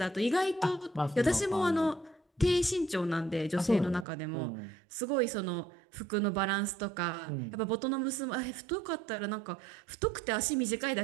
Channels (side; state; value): left; drops out; at 4.0 s